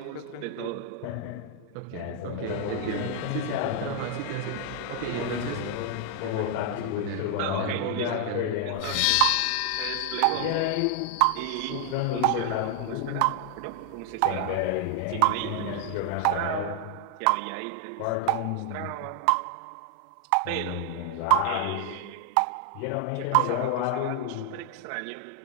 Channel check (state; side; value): different; both; correlation 0.00